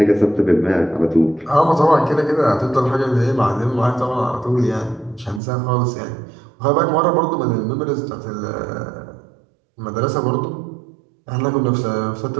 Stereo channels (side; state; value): left; drops out; at 5.4 s